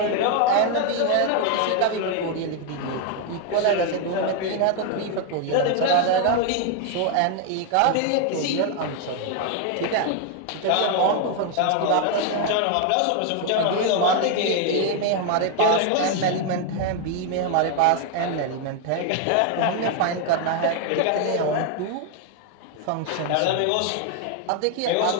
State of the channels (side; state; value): both; different; correlation 0.01